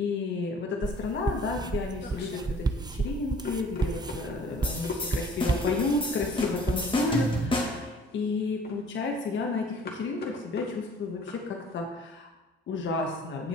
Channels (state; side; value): normal; both; correlation 0.52